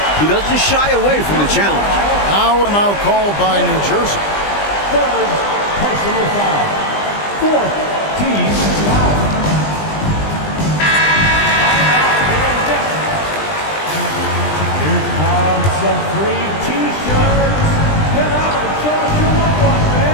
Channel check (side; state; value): right; late; 20 ms